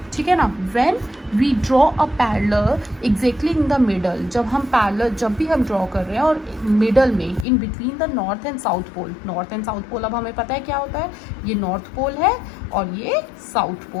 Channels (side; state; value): right; drops out; at 7.5 s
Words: ठीक है ना? When we draw a parallel exactly in the middle, जब भी हम ड्रॉ कर रहे हैं और मिडल में in between the north and south pole. North and south pole अब हमें पता है क्या होता है, ये नॉर्थ पोल है और ये साउथ